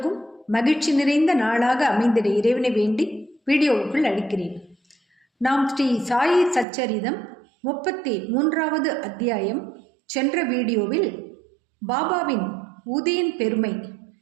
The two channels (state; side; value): drops out; left; at 6.7 s